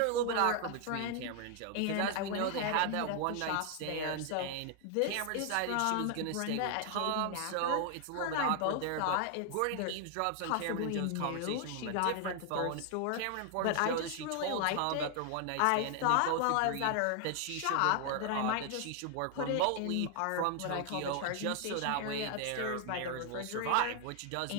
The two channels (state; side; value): different; both; correlation 0.00